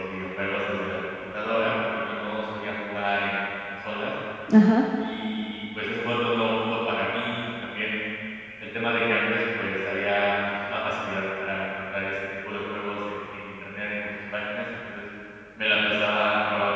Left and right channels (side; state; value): both; identical; correlation 1.00